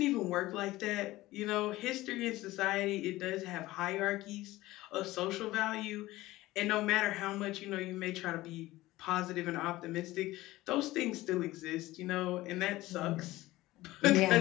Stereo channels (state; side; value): quieter; right; 17.7 dB